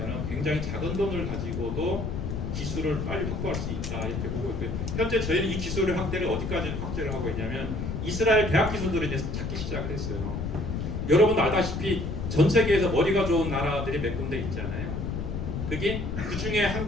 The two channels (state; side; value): noise; left; rumble, 4 dB below the sound